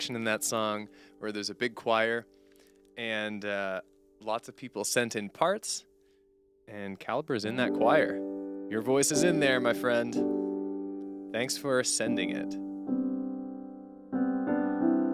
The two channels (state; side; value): identical; both; correlation 1.00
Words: in that song where there's a big choir, and lots of people sent in parts, and Caliber's in that choir. Your voice is in there, my friend. Thanks for sending it.